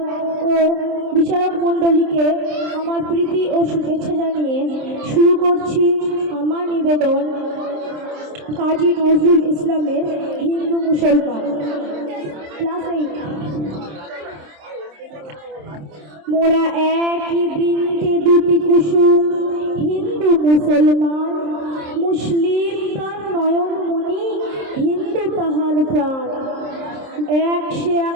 ও বিচারক মণ্ডলীকে আমার প্রীতি ও শুভেচ্ছা জানিয়ে শুরু করছি আমার নিবেদন কাজী নজরুল ইসলামের হিন্দু মুসলমান ক্লাস 8। মোরা একই বৃন্তে দুটি কুসুম, হিন্দু মুসলমান, মুসলিম তার নয়নমণি, হিন্দু তাহার প্রাণ। এক সে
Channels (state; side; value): late; left; 27 ms